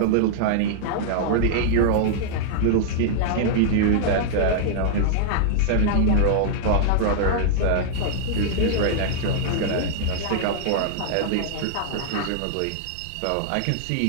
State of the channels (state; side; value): different; both; correlation -0.01